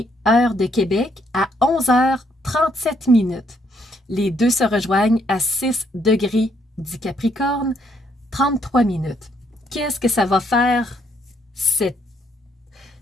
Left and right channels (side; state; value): both; normal; correlation 0.71